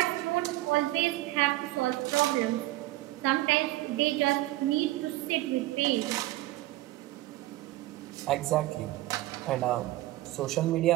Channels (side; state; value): left; quieter; 17.4 dB